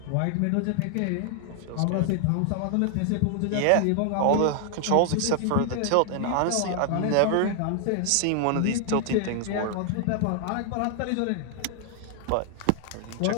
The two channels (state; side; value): different; both; correlation 0.00